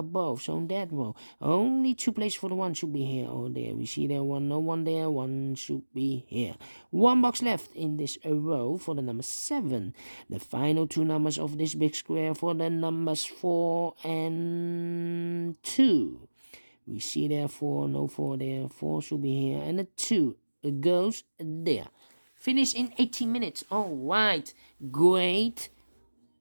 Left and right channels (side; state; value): both; inverted; correlation -1.00